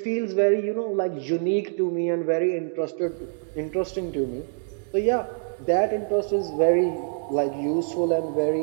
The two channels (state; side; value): silent; left; digital silence